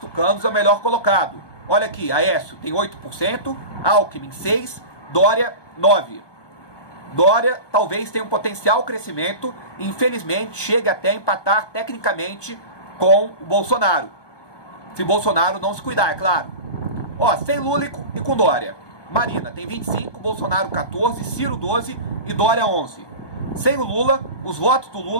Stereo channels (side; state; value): right; late; 1.2 ms